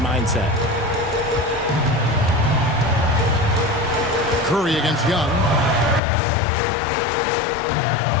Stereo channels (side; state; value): right; drops out; at 6.0 s